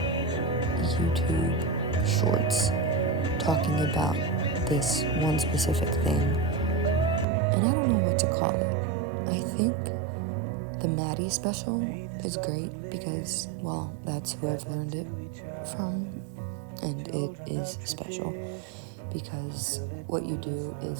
YouTube shorts talking about this one specific thing. And I don't know what to call it. I think the Maddie special is great because, well, that's who I've learned it from, and it is special because what you do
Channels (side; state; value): left; drops out; at 7.2 s